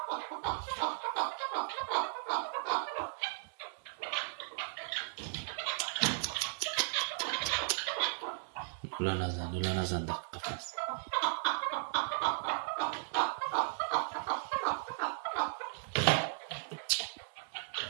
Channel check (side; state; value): left; silent; digital silence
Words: دولا نزن در قفس